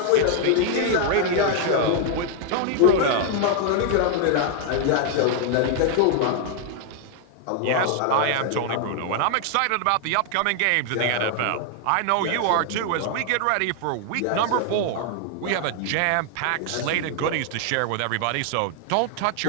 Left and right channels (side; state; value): both; different; correlation 0.00